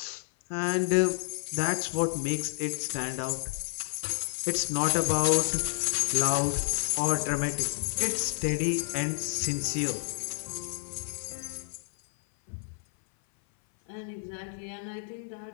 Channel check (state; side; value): silent; right; 56 dB below the other